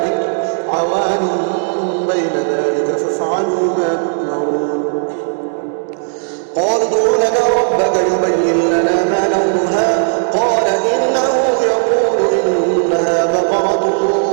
عوان بين ذلك فافعلوا ما تؤمرون. قالوا ادع لنا ربك يبين لنا ما لونها قال إنه يقول إنها بقرة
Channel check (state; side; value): silent; left; digital silence